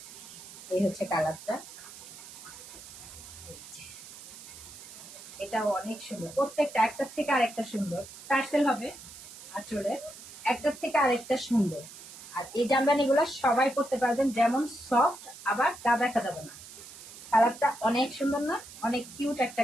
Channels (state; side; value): noise; right; hiss, 15 dB below the sound